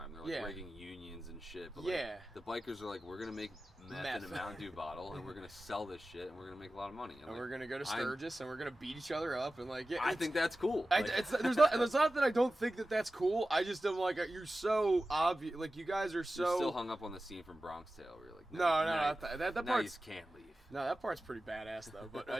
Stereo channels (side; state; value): both; normal; correlation 0.95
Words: They're like Yeah. rigging unions and shit. But Yeah. like, the bikers are like, we're gonna make meth in a Mountain Dew bottle and we're gonna sell this shit and we're gonna make a lot of money. And we're gonna go to Sturgis and we're gonna beat each other up and like yeah. I think that's cool. It's not that I don't think that that's cool. I just am like you're so obvious. Like you guys are so. You're still hung up on the scene from Bronx Tale where you're like, No, now that you part's can't leave. no, that part's pretty badass though. But